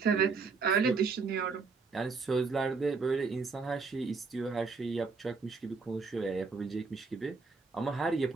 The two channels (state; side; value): quieter; left; 4.5 dB